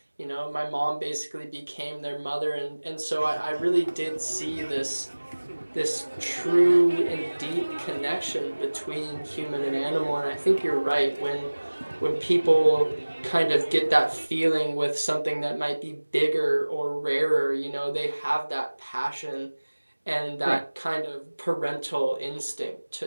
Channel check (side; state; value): both; inverted; correlation -1.00